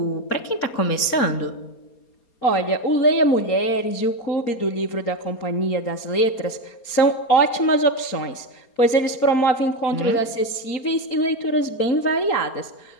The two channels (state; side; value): late; right; 4.3 ms